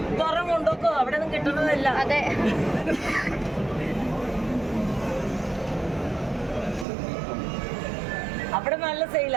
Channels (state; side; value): drops out; left; at 6.9 s